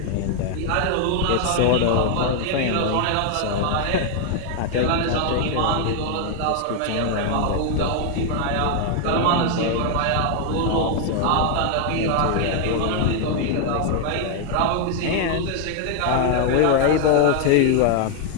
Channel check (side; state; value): both; different; correlation 0.00